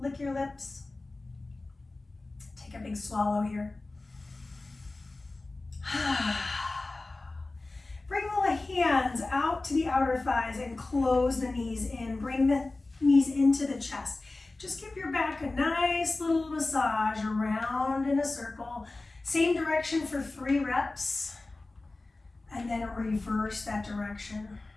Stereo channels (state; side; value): quieter; right; 3.2 dB